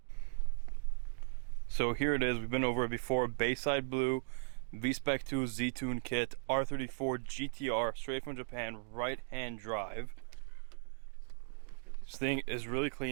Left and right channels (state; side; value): silent; left; 53 dB below the other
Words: So here it is, we've been over it before. Bayside Blue, V-Spec II Z-Tune kit, R34 GT-R, straight from Japan, right-hand drive. This thing is really